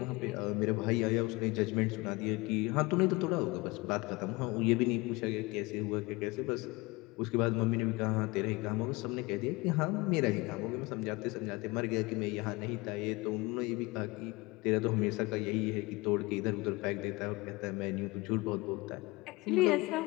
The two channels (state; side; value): quieter; right; 23.8 dB